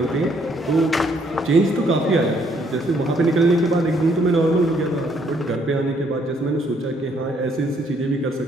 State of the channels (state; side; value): normal; both; correlation 0.68